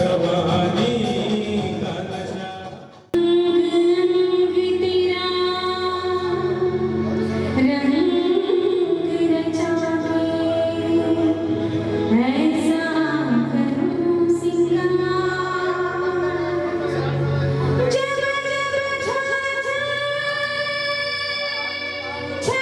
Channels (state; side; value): identical; both; correlation 1.00